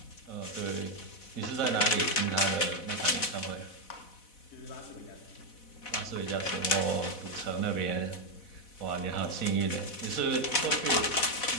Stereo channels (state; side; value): late; right; 4.1 ms